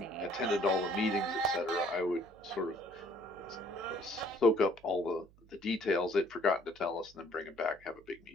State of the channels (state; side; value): noise; right; hum, 26 dB below the sound